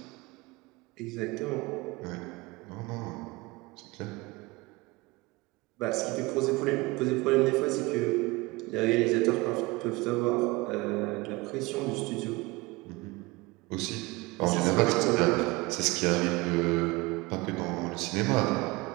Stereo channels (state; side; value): quieter; left; 23.0 dB